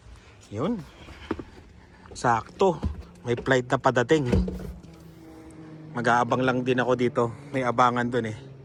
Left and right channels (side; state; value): both; identical; correlation 1.00